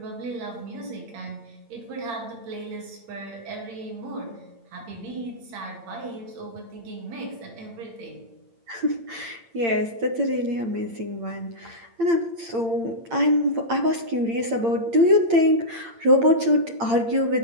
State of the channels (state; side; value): late; left; 8.8 ms